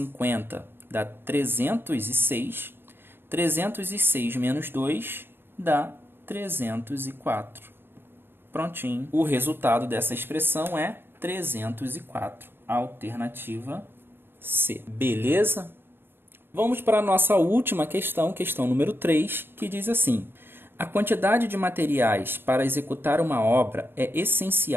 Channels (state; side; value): late; left; 0.10 ms